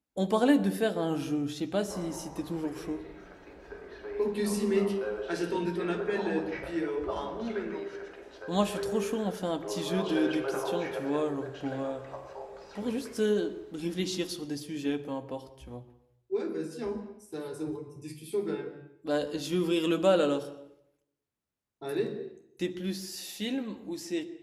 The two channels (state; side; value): identical; both; correlation 1.00